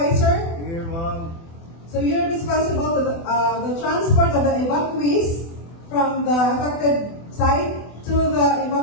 Here, ma'am. So you're responsible for the transport of the evacuees from the affected site to the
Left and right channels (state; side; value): late; right; 24 ms